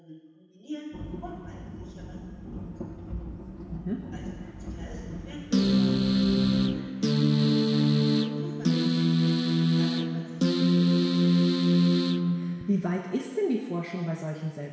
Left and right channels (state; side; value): identical; both; correlation 1.00